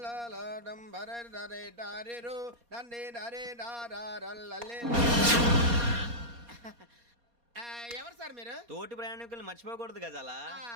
డంబరే డరే డారిరు నన్నే డరే డారల్లలే. ఎవరు సార్ మీరు? తోటి ప్రయాణికుల్ని మర్చిపోకూడదు గజాల.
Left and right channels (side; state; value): left; late; 4.2 ms